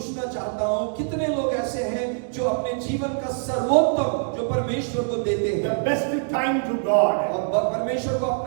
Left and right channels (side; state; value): left; silent; digital silence